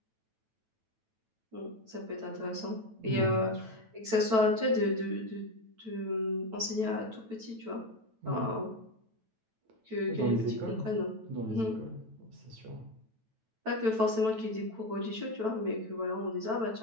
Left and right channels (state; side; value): late; left; 9.1 ms